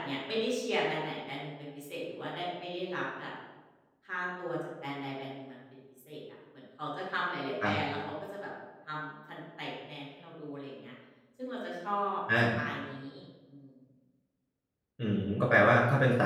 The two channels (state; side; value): identical; both; correlation 1.00